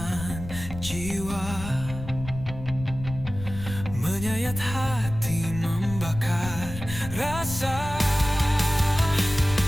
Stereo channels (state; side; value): noise; left; rumble, 10 dB below the sound